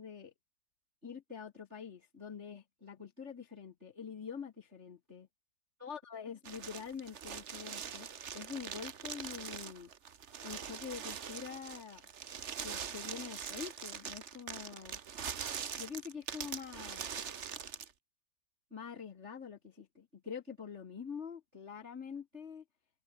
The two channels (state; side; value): late; left; 3.4 ms